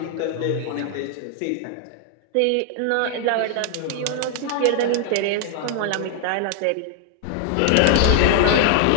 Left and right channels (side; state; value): both; different; correlation 0.00